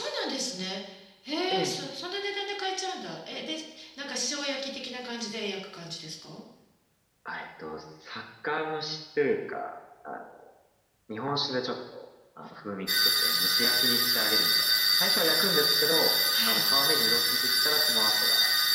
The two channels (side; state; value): both; identical; correlation 1.00